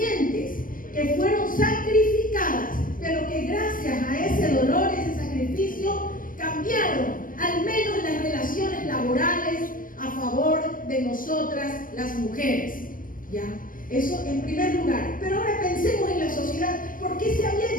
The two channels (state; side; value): late; right; 0.40 ms